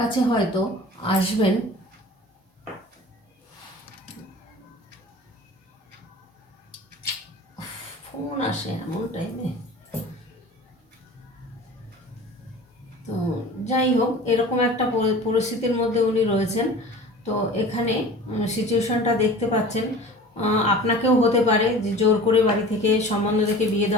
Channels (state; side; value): normal; both; correlation 0.40